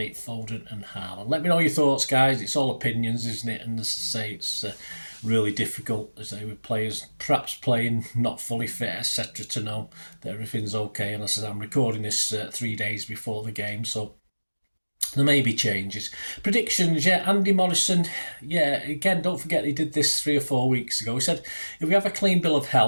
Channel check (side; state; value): both; inverted; correlation -1.00